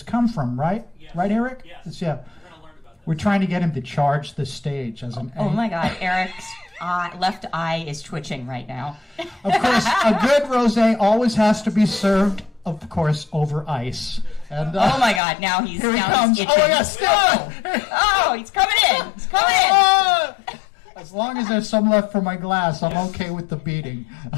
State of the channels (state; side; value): drops out; right; at 15.2 s